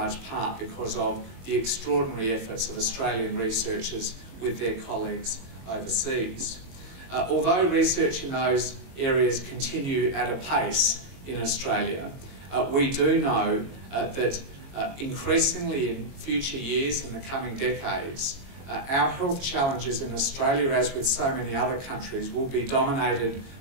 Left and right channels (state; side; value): late; left; 22 ms